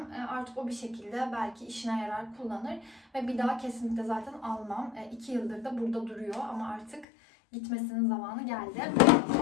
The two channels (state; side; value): drops out; right; at 7.1 s